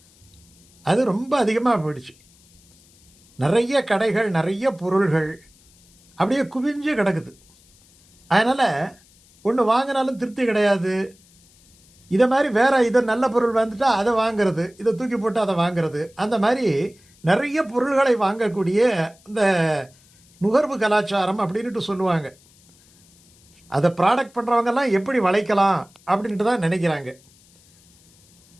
அது ரொம்ப அதிகமாக போயிடுச்சு. நிறைய கடைகள், நிறைய பொருள்கள் அப்படியே குவிஞ்சு கிடக்குது. அதனால் ஒன்று வாங்கினாலும் திருப்தி கிடையாது. இதை மாதிரி இதை நல்ல பொருள் வந்துட்டால் அதை வாங்கிறது, இதை தூக்கி போட்டு அதை வாங்கிறது, அந்த மாதிரி நிறைய பொருள்களை வாங்கக்கூடிய இந்த நுகர்வு கலாச்சாரம் அப்படின்ட்டு சொல்லுவாங்க. அதை ப்ராடக்ட் பண்ணுறவங்கெல்லாம் எப்படி வளைக்கலாம் அப்படின்ட்டு தான் நினைக்கிறாங்க.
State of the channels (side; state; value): left; noise; hiss, 30 dB below the sound